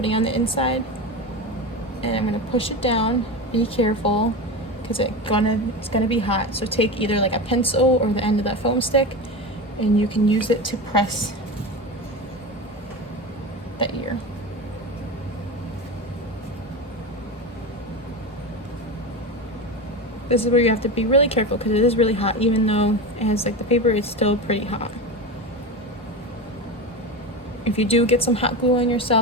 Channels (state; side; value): normal; both; correlation 0.23